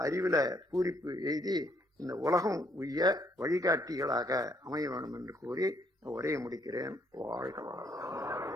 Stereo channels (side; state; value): both; normal; correlation 0.69